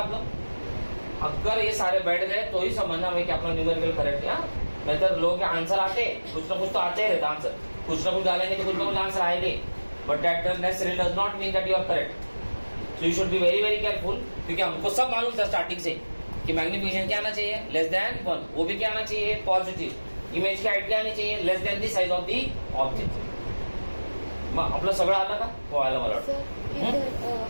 अगर ये सारे बैठ गए तो ही समझना है कि अपना न्यूमेरिकल करेक्ट है. नहीं तो लोग के आंसर आते, कुछ ना कुछ तो आते ही रहता आंसर, कुछ ना कुछ डालेंगे तो कुछ ना कुछ आंसर आएंगे, but that necessary does not mean that you are correct. So you should be very very careful, क्योंकि हमको सब मालूम था स्टार्टिंग से कि मैग्निफिकेशन क्या आना चाहिए? लेस देन 1. वो भी क्या आना चाहिए? पॉजिटिव. इमेज की हाइट क्या आनी चाहिए? Less than the size of the object. मग आपलं सगळं आलं का? हो आलं मला वाटतं.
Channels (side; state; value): both; inverted; correlation -1.00